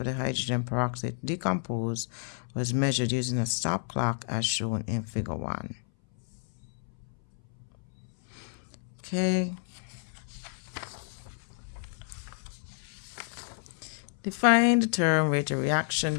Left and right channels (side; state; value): right; silent; 58 dB below the other